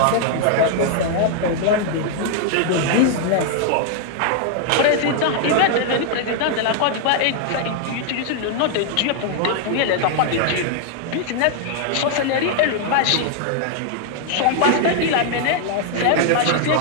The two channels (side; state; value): both; different; correlation 0.00